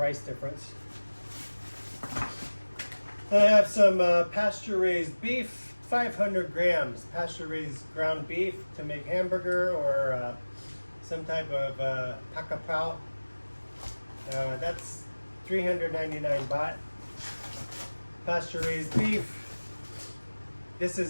difference. I have some pasture-raised beef, 500 grams pasture-raised ground beef to make hamburger or some type of pakapao. That's 399 baht. Pasture-raised beef. This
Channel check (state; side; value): inverted; both; correlation -1.00